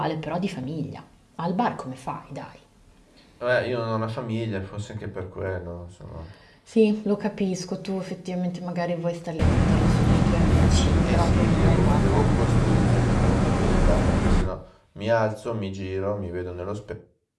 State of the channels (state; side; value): identical; both; correlation 1.00